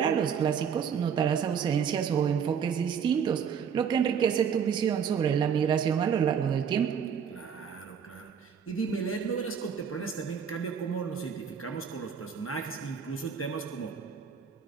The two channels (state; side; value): quieter; left; 7.3 dB